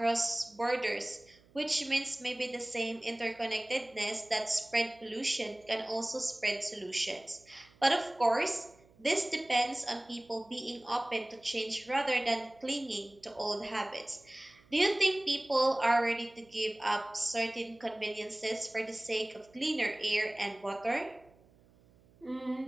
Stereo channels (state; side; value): noise; right; hum, 29 dB below the sound